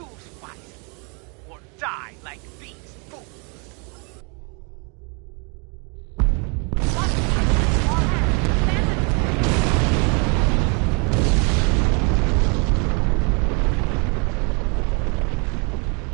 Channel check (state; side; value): quieter; left; 34.3 dB